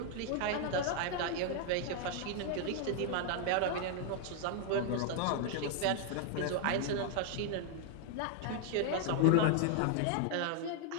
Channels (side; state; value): both; different; correlation 0.00